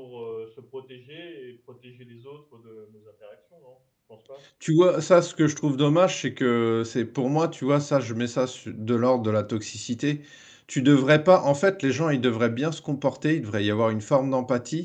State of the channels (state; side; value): identical; both; correlation 1.00